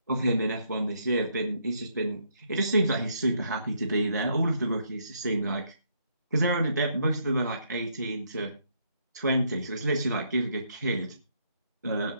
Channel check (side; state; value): both; inverted; correlation -0.73